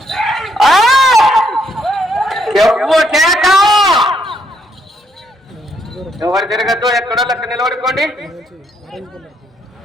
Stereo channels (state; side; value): normal; both; correlation 0.72